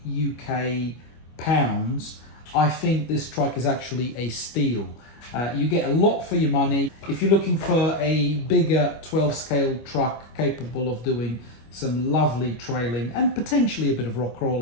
UK pounds, I think this truck is actually a steal. You get a lot for your money. If you're looking for a bigger 12 scale truck capable of doing some lovely trailing and potentially a bit of rock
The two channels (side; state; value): right; late; 25 ms